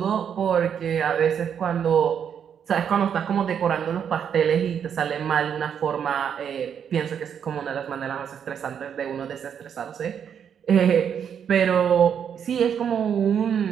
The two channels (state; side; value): quieter; left; 8.1 dB